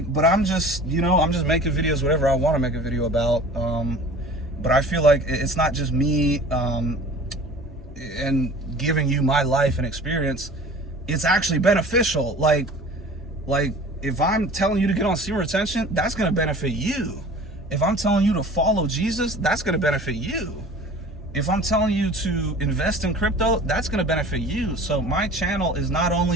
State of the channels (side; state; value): both; normal; correlation 0.43